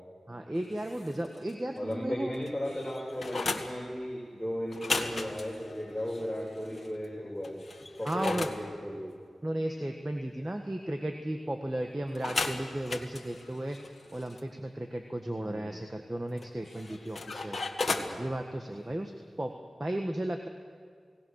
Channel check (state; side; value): normal; both; correlation 0.95